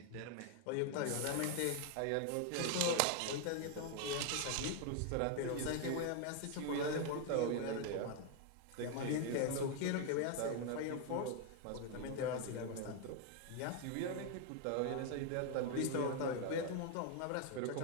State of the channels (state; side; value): different; both; correlation 0.01